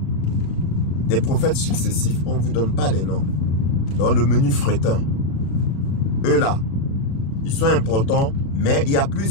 Des prophètes successifs. On ne vous donne pas les noms. Dans le menu fretin. Eux là, ils sont importants, mais il y a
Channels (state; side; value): late; right; 36 ms